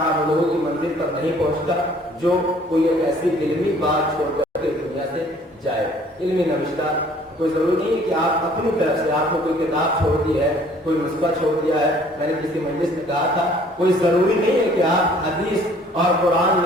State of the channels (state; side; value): normal; both; correlation 0.56